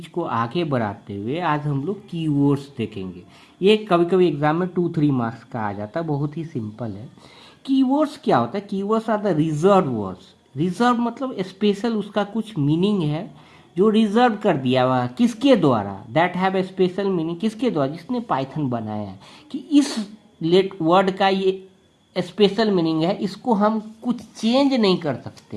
को आगे बढ़ाते हुए आज हम लोग कीवर्ड्स देखेंगे। ये कभी कभी एग्जाम में 2-3 मार्क्स का आ जाता है, बहुत ही सिंपल है। कीवर्ड्स क्या होता है, keywords are the reserve words. Reserve मतलब स्पेशल, उसका कुछ मीनिंग है जो रिजर्व कर दिया हुआ, किसके द्वारा, that have a special meaning, किसके द्वारा, जिसने पाइथन बनाया है, कि इस लेट वर्ड का ये स्पेशल मीनिंग है, इसको हम कुछ चेंज नहीं कर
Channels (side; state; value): both; identical; correlation 1.00